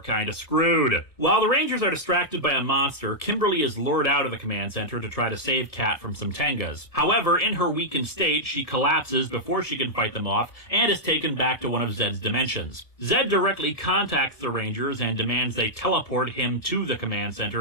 kinda screwed. While the Rangers are distracted by a monster, Kimberly is lured out of the command center to try to save Kat from some Tengas. However, in her weakened state, she collapses before she can fight them off, and is taken back to one of Zed's dimensions. Zed directly contacts the Rangers and demands they teleport him to the command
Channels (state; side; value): late; right; 1.6 ms